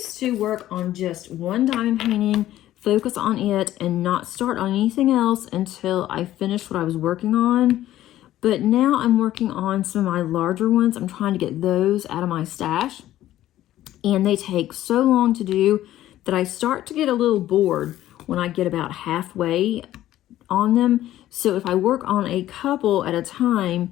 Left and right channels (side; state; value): right; quieter; 13.7 dB